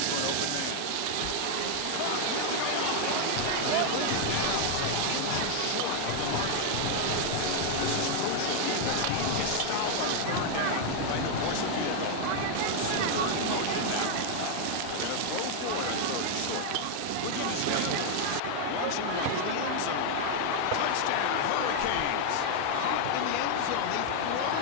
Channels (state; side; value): different; both; correlation 0.00